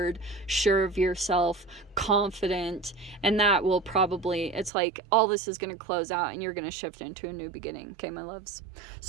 sure of yourself, confident, and that will probably, it's like all this is going to close out and you're going to shift into a new beginning. Okay, my loves?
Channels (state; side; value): drops out; left; at 4.7 s